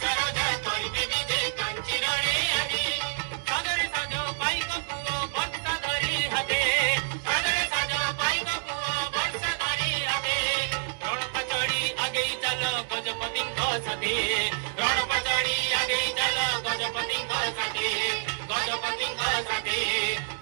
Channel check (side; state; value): left; silent; digital silence